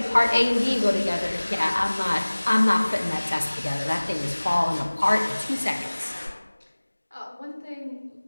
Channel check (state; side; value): inverted; both; correlation -1.00